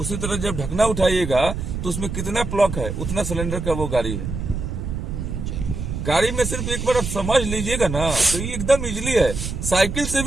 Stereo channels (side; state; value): right; noise; rumble, 4 dB below the sound